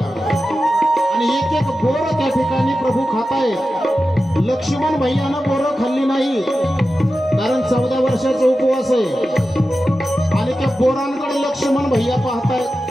आणि एक एक बोर त्या ठिकाणी प्रभू खातायत. लक्ष्मण भैयानं बोरं खाल्ली नाही कारण 14 वर्षाचा उपवास आहे. आणि त्या बोरांकडे लक्ष्मण भैया पाहतायत.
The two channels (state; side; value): normal; both; correlation 0.93